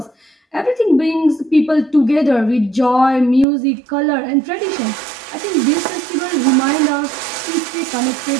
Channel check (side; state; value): left; drops out; at 3.5 s